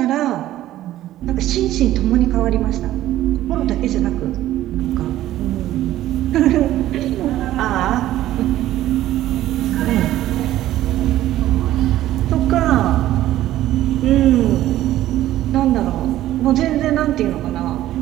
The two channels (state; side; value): quieter; left; 14.0 dB